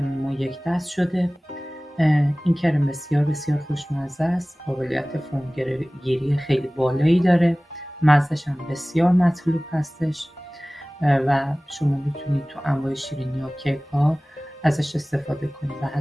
ما یک دست شده. این کرم بسیار بسیار خوشمزه است، قابلیت فومگیری خیلی بالایی داره، مزهش هم بسیار مطلوب هستش و شما میتونید تو انواع شیرینی ها، کیک ها ازش استفاده کنید و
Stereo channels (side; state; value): both; normal; correlation 0.98